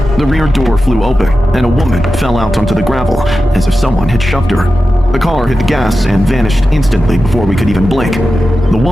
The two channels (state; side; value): normal; both; correlation 0.93